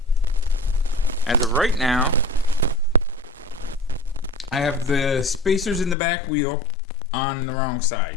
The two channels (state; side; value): drops out; right; at 6.0 s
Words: As of right now, I have the spacers in the back wheel on the wrong